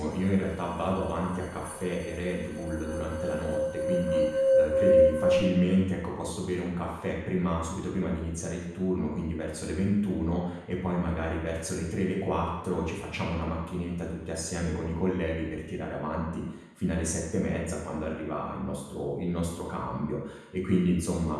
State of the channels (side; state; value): both; identical; correlation 1.00